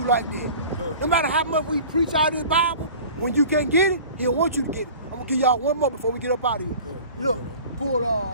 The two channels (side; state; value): both; inverted; correlation -0.42